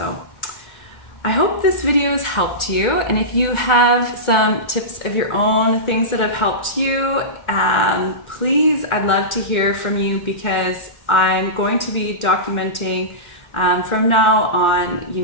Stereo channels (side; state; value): right; late; 1.4 ms